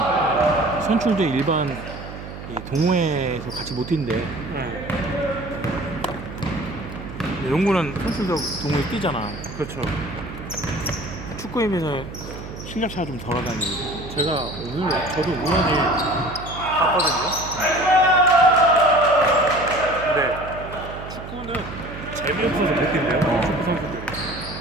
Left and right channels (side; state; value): right; noise; hum, 11 dB below the sound